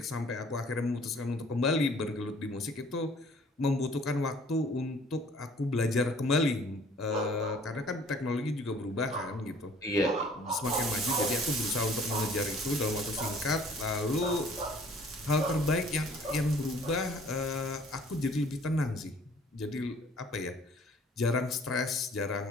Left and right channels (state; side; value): normal; both; correlation 0.55